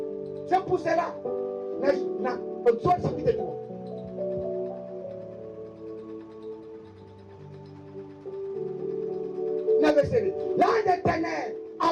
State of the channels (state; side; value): identical; both; correlation 1.00